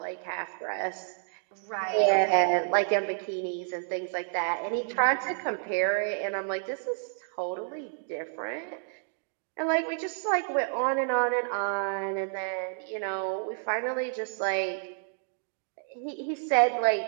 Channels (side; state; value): left; silent; digital silence